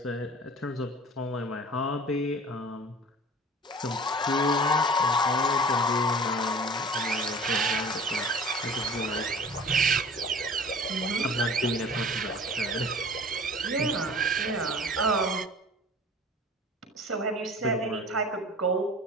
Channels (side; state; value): both; normal; correlation 0.43